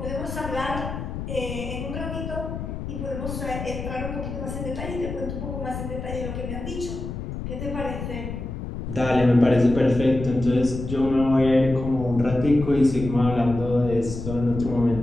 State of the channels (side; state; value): left; noise; rumble, 7 dB below the sound